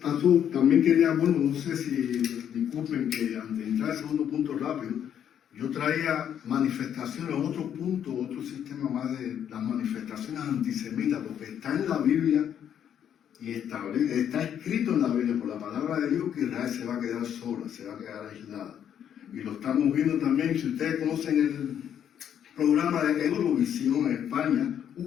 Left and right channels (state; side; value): quieter; right; 9.3 dB